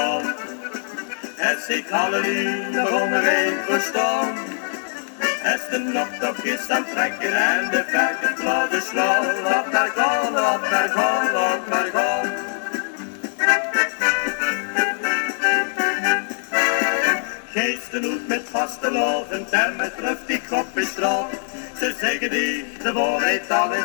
het zich halleluja begon er een verstaan. Als de noptocht is aan het trekken en de verken platen slaan, lot naar gaan, lot naar gaan, lot naar gaan. Geesten uit met vastelovend en met luchtig op de straat. Ze zeggen die de waarheid al in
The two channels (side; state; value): right; silent; digital silence